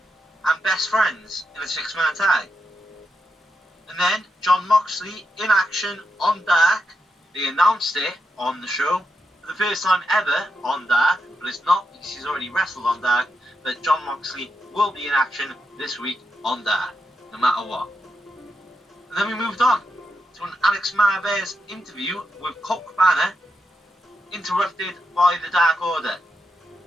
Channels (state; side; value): normal; both; correlation 0.85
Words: and Best Friends in a 6-man tag. And then John Moxley in action on Dark. They announced it on the show for the first time ever on Dark, but it's not because he's already wrestled on Dark. But John Moxley will be in action this week on Dark, no matter what. And then we moved on to an Alex Marvez interview with Colt Cabana, interrupted by the Dark Order.